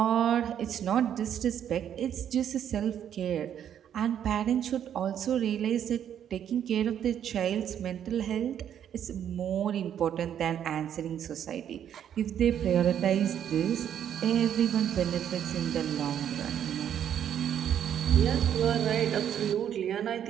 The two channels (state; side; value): quieter; left; 9.5 dB